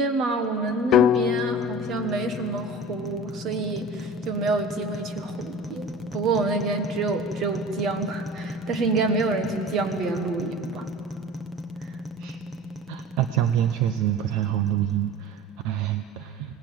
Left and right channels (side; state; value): both; normal; correlation 0.38